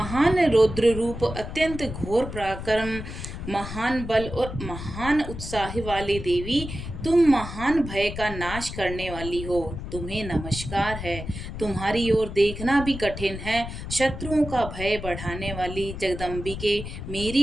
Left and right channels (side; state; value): left; noise; rumble, 8 dB below the sound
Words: रौद्र रूप, अत्यंत घोर पराक्रम महान बल और महान उत्साह वाले देवी, तुम महान भय का नाश करने वाली हो, तुम्हें नमस्कार है। तुम्हारी ओर देखना भी कठिन है। शत्रुओं का भय बढ़ाने वाली जगदम्बिके,